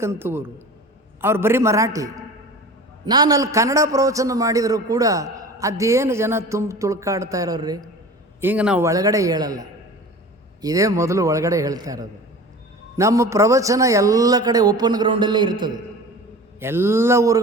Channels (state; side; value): normal; both; correlation 0.38